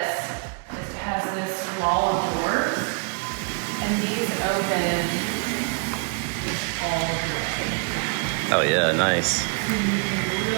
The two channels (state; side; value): quieter; left; 37.6 dB